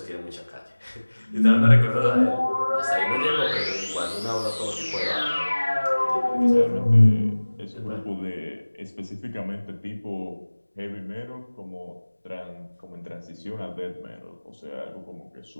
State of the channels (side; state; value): both; inverted; correlation -1.00